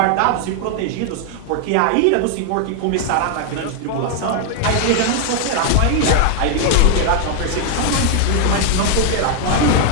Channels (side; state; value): both; different; correlation 0.00